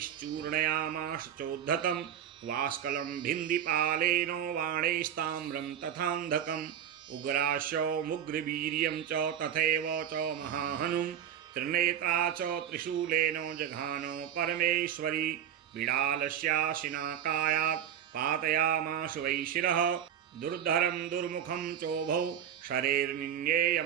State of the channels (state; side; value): quieter; left; 9.6 dB